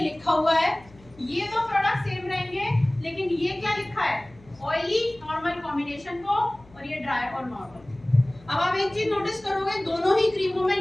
लिखा हुआ है ये दो प्रोडक्ट सेम रहेंगे, लेकिन ये क्या लिखा है, ऑयली नॉर्मल कॉम्बिनेशन को, और ये ड्राई और नॉर्मल। अब आप एक चीज नोटिस करोगे, दोनों ही क्रीमों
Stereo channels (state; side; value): noise; left; hum, 25 dB below the sound